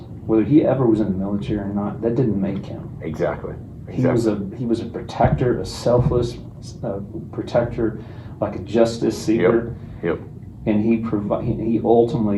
whether he ever was in the military or not, that didn't make him. Exactly. He was a protector, a selfless protector, like a justice seeker. Yep. And he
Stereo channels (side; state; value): both; identical; correlation 1.00